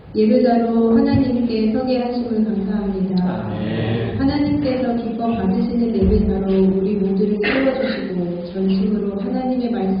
예배자로 하나님께 서게 하심을 감사합니다. 하나님께서 기뻐 받으시는 예배자로 우리 모두를 세워주시고 전심으로 하나님의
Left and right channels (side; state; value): both; identical; correlation 1.00